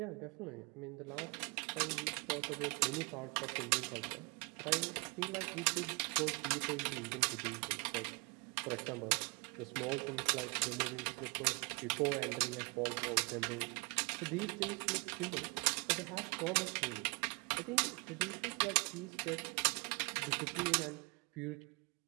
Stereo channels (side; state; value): left; quieter; 31.1 dB